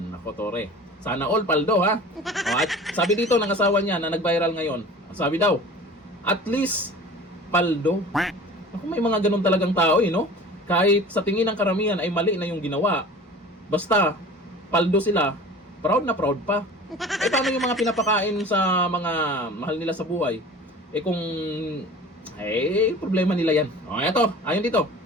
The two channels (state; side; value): normal; both; correlation 0.41